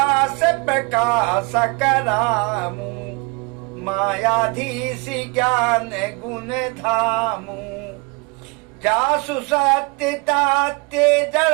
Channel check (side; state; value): left; quieter; 29.3 dB